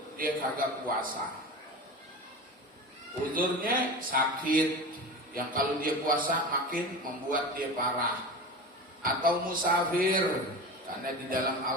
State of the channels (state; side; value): normal; both; correlation 0.30